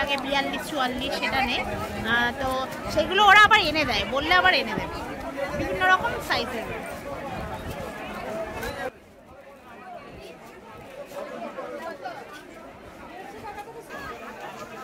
42, 44 সেটা নেই। তো সেগুলো ওরা আবার এনে দেয়, বললে আবার এনে দেবে, বিভিন্ন রকম সাইজের রয়েছে।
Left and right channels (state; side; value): identical; both; correlation 1.00